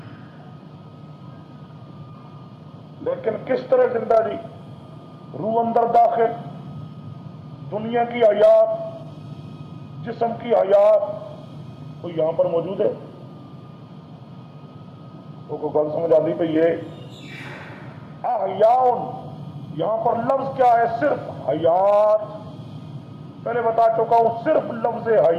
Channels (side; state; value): both; identical; correlation 1.00